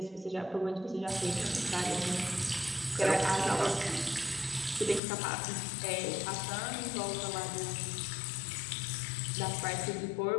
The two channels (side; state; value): right; drops out; at 5.0 s